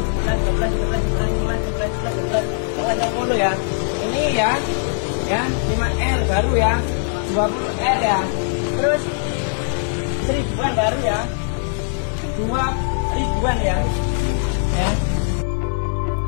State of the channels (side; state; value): right; silent; 60 dB below the other